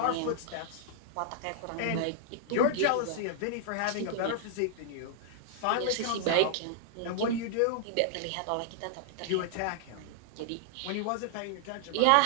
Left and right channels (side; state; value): both; different; correlation -0.01